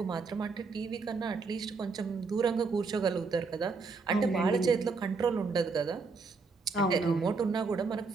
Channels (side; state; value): left; quieter; 4.4 dB